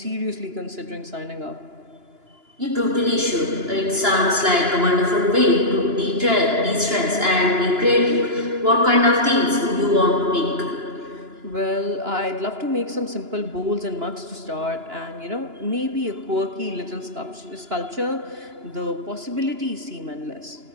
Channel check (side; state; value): left; late; 2.9 ms